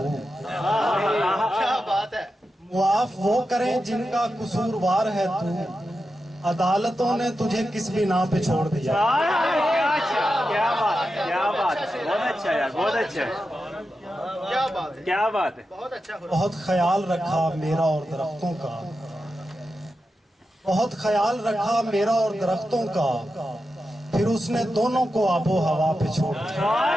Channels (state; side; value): normal; both; correlation 0.90